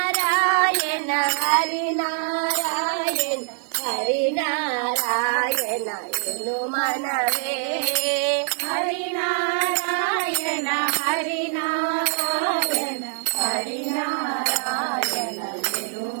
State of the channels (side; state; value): left; silent; digital silence